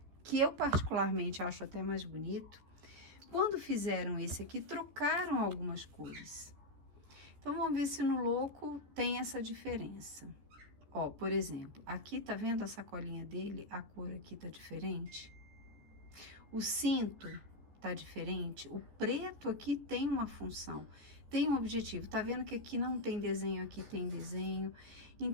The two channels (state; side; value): late; left; 14 ms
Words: que eu particularmente acho até mais bonito, quando fizeram esse aqui, trocaram algumas cores. Então, vamos ver se no louco tem essa diferença. Ó, por exemplo, aqui tá vendo a sacolinha dele? A cor aqui tá diferente. O cinto tá diferente. O preto aqui tem uma função, tem um objetivo. Tá vendo que aqui não tem desenho, aqui tem desenho.